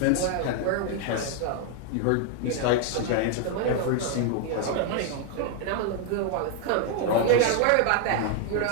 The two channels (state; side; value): different; both; correlation 0.00